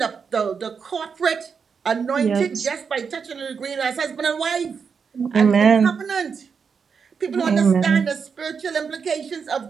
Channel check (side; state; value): left; quieter; 6.0 dB